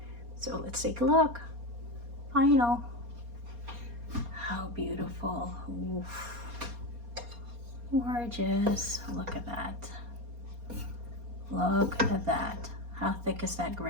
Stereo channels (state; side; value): late; left; 4.3 ms